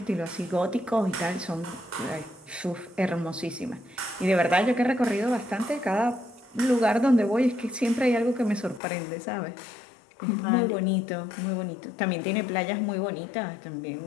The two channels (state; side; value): drops out; right; at 8.8 s